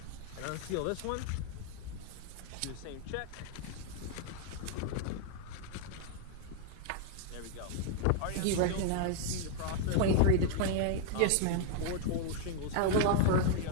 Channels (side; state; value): both; different; correlation 0.00